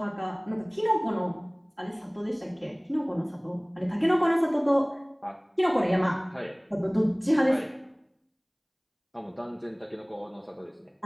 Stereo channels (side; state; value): both; identical; correlation 1.00